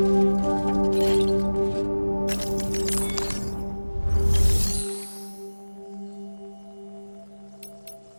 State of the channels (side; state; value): both; inverted; correlation -1.00